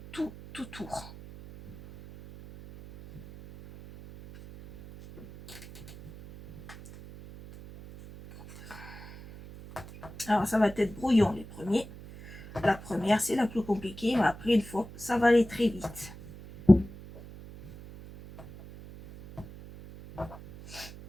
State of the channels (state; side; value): noise; right; hum, 16 dB below the sound